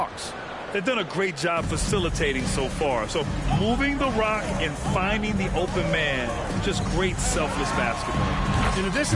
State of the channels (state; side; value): identical; both; correlation 1.00